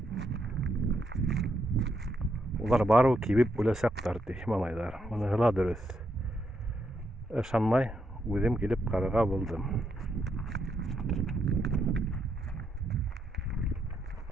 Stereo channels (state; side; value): normal; both; correlation 0.79